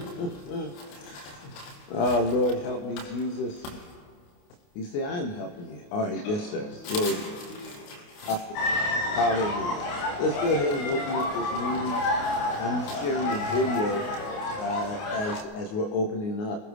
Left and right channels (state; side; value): late; right; 28 ms